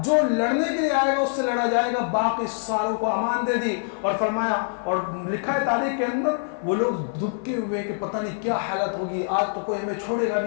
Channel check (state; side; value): silent; right; 55 dB below the other